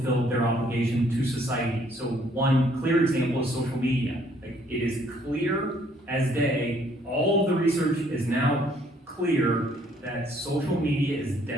their obligation to society. So one clear example is social media. Like, it is clear as day, all of the research is now clear that social media is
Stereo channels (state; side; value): normal; both; correlation 0.64